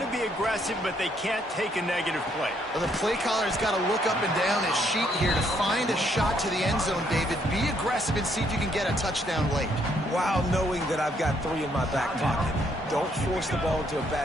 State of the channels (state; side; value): normal; both; correlation 0.70